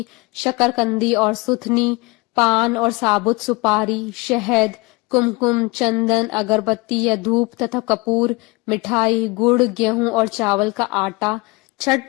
शकरकंदी और सुथनी, पान और साबुत सुपारी, शहद, कुमकुम, चंदन, अगरबत्ती या धूप तथा कपूर, मिठाई, गुड़, गेहूं और चावल का आटा। छठ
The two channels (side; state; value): right; quieter; 25.6 dB